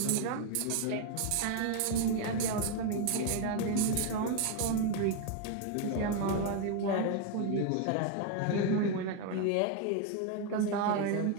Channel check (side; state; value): both; different; correlation 0.01